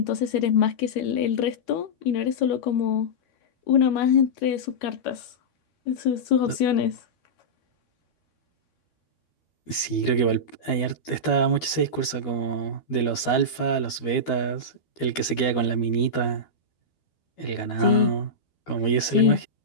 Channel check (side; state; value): right; late; 12 ms